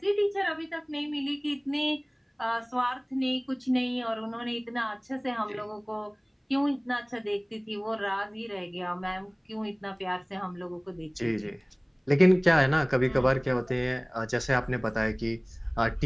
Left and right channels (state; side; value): identical; both; correlation 1.00